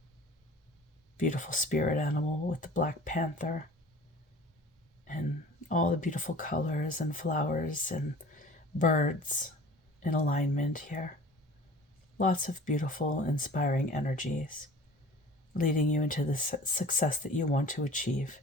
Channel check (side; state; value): both; normal; correlation 0.44